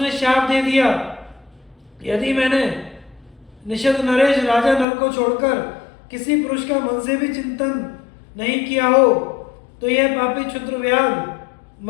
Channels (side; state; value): right; drops out; at 4.9 s